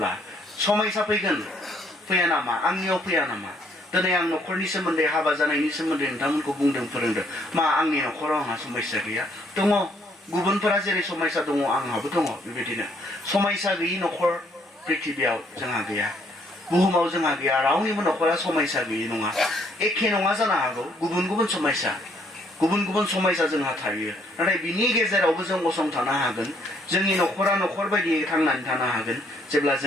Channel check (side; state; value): both; normal; correlation 0.68